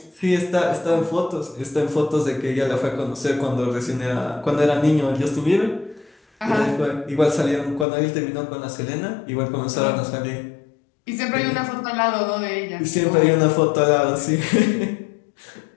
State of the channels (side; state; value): right; drops out; at 7.9 s